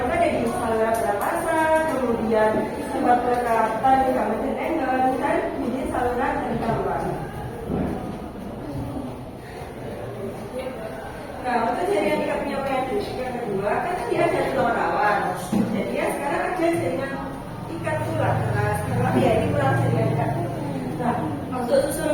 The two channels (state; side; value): identical; both; correlation 1.00